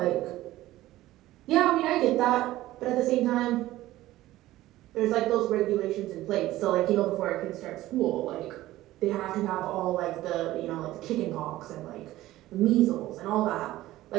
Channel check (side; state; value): left; quieter; 16.0 dB